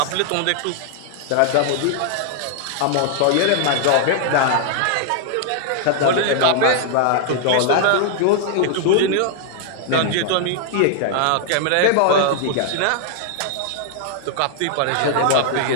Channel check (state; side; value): different; both; correlation 0.00